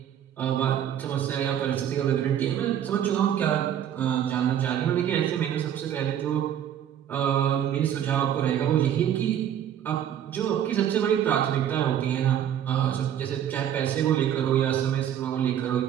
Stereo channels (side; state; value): left; quieter; 10.1 dB